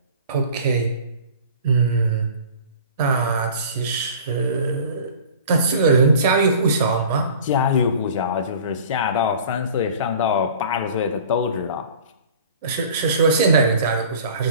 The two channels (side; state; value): both; inverted; correlation -0.43